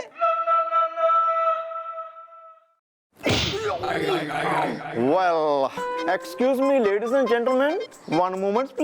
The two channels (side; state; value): both; identical; correlation 1.00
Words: Well, excuse me, ladies and gentlemen, one moment,